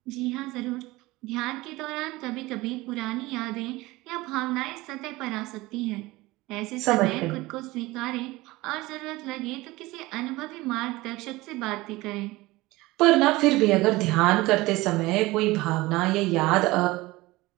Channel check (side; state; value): left; quieter; 20.1 dB